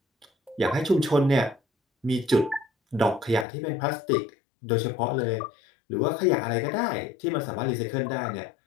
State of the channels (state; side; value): drops out; right; at 3.5 s